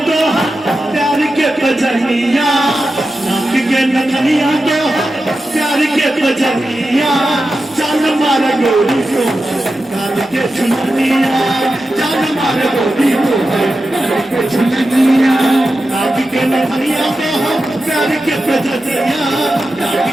तो प्यार के बजनिया, नाक के नथनिया तो प्यार के बजनिया, जान मार गोरी को काल के झुलनिया, जान मार गोरी को काल के झुलनिया, नाक के नथनिया तो प्यार के बजनिया, नाक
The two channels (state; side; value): normal; both; correlation 0.91